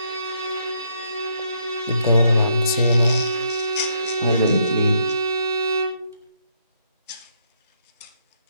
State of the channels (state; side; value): inverted; both; correlation -0.73